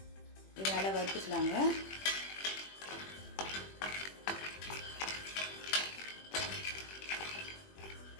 இது நல்லா வறுத்துக்கலாங்க.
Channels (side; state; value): right; late; 21 ms